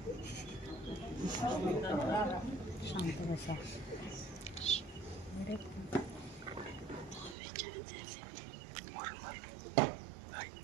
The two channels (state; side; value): drops out; left; at 7.4 s